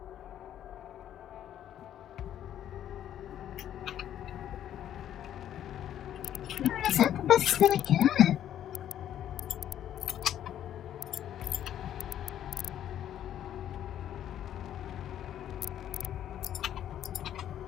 Is that the best thing I get?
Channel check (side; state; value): right; quieter; 10.9 dB